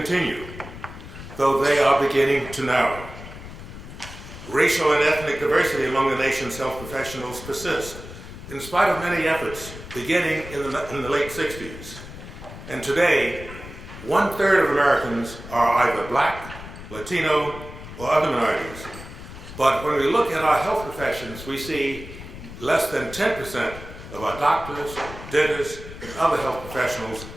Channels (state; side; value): noise; left; rumble, 13 dB below the sound